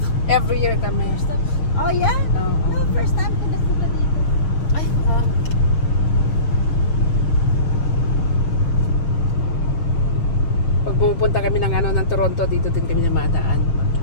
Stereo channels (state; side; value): late; right; 6.6 ms